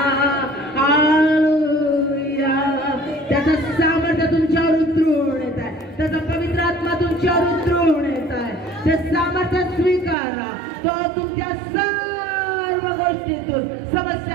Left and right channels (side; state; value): left; drops out; at 10.2 s